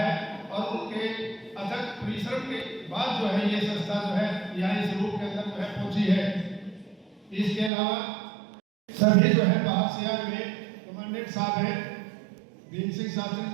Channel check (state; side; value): drops out; left; at 7.7 s